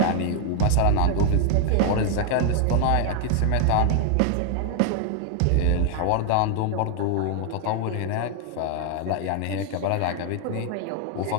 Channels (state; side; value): different; both; correlation 0.00